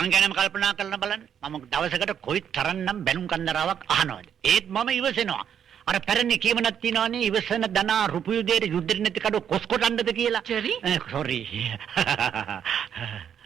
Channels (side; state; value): left; quieter; 8.6 dB